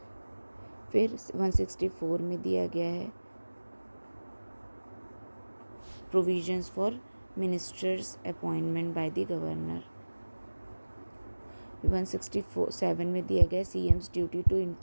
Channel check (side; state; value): both; inverted; correlation -1.00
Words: फिर 164 में दिया गया है provisions for ministers appointment by the governor. 167 में दिया गया CM's duty to